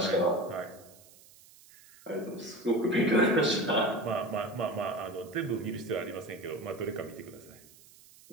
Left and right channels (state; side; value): noise; right; hiss, 24 dB below the sound